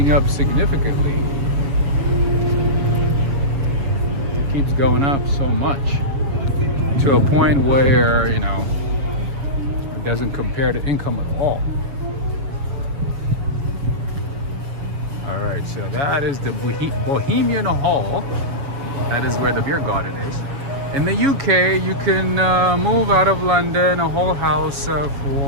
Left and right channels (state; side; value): late; left; 7.2 ms